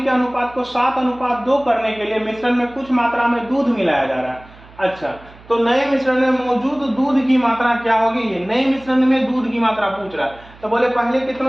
अनुपात को 7:2 करने के लिए मिश्रण में कुछ मात्रा में दूध मिलाया जा रहा है। अच्छा, तो नए मिश्रण में मौजूद दूध की मात्रा क्या होगी, ये नए मिश्रण में दूध की मात्रा पूछ रहा है। तो बोले पहले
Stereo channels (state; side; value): noise; right; hum, 23 dB below the sound